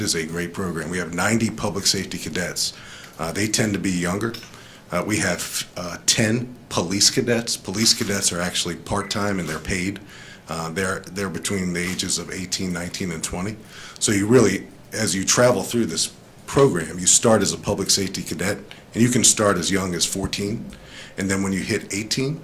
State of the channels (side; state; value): both; identical; correlation 1.00